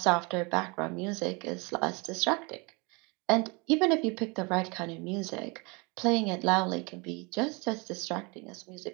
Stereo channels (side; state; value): left; quieter; 28.9 dB